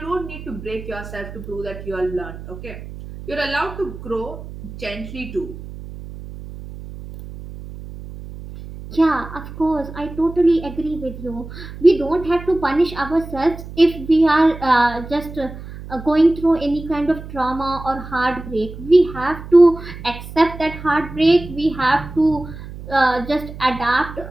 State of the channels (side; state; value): right; noise; hum, 13 dB below the sound